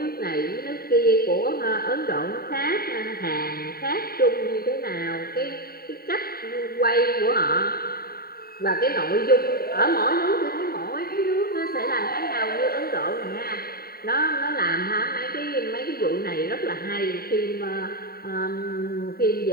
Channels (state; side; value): late; right; 0.44 ms